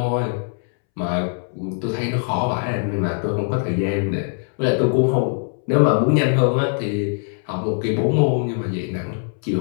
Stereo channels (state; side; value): silent; right; 65 dB below the other